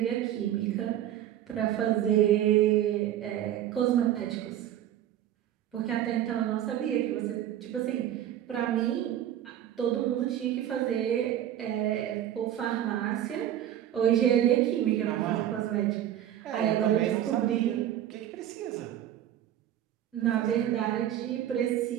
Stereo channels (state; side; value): quieter; left; 11.5 dB